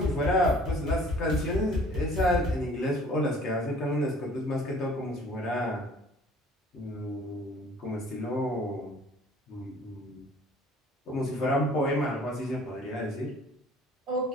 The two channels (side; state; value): both; normal; correlation 0.52